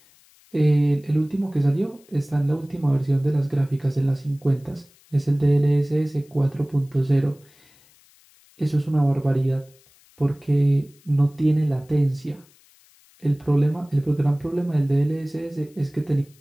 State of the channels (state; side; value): noise; left; hiss, 30 dB below the sound